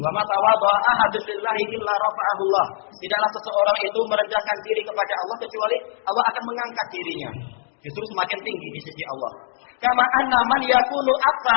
ma tawadha'a ahadun lillahi illa rafa'ahullah. Tidaklah seseorang itu merendahkan diri kepada Allah kecuali Allah akan mengangkat dirinya. Justru semakin tinggi di sisi Allah. Kama anna man yakunu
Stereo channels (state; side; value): silent; right; digital silence